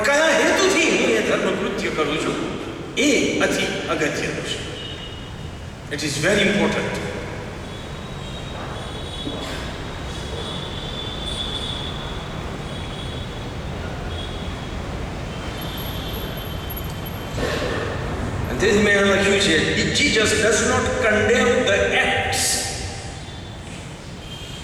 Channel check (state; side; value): identical; both; correlation 1.00